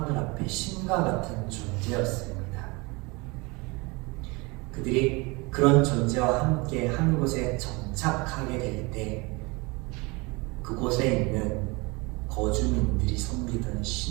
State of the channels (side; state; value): left; quieter; 26.2 dB